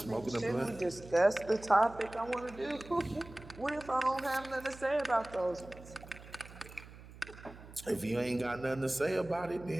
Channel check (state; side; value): noise; right; hum, 17 dB below the sound